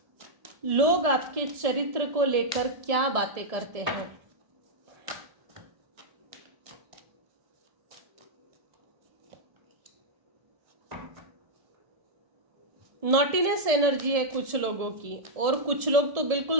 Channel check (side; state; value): left; late; 1.7 ms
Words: लोग आपके चरित्र को लेकर क्या बातें करते हैं। नॉटीनेस एनर्जी है कुछ लोगों की, और कुछ लोग तो